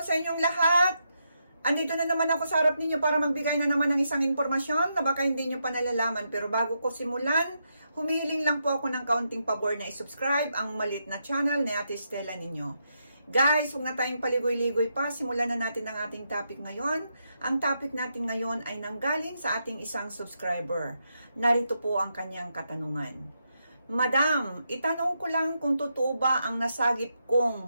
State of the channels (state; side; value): inverted; both; correlation -0.82